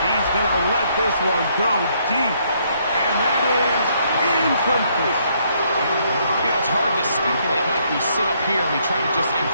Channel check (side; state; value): both; inverted; correlation -0.70